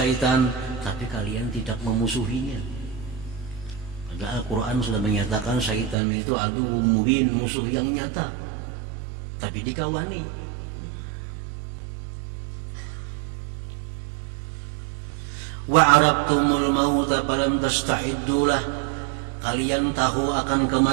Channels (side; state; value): left; drops out; at 6.0 s